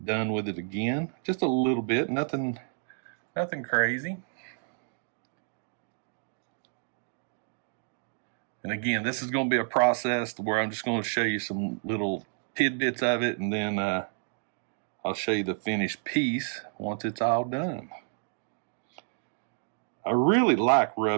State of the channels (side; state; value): left; silent; digital silence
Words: done with it again. Just a little bit, nothing crazy. And again, this is going to be a process where I'm just going to show you some little tidbits of it, and then I'll show you the finished piece once it's all done. I really like